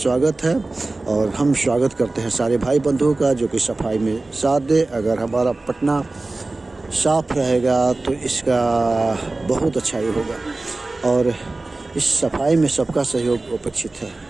है और हम स्वागत करते हैं सारे भाई बंधुओं का जो कि सफाई में साथ दे। अगर हमारा पटना साफ रहेगा तो इसका बहुत अच्छा ही होगा। और इस सफाई में सबका सहयोग अपेक्षित है।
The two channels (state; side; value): quieter; left; 3.2 dB